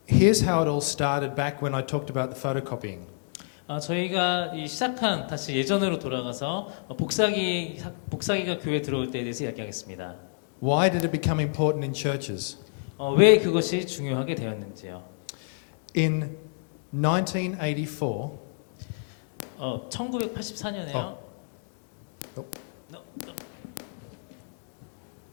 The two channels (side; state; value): right; silent; digital silence